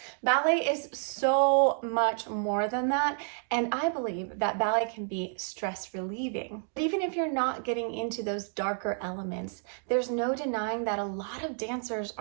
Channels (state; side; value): silent; left; 56 dB below the other